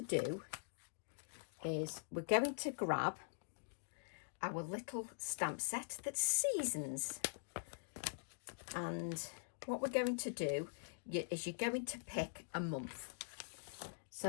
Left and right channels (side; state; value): right; silent; digital silence